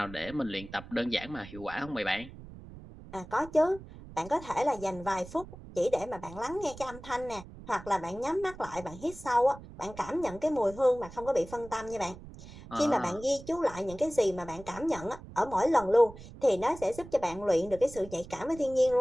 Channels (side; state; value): right; noise; rumble, 16 dB below the sound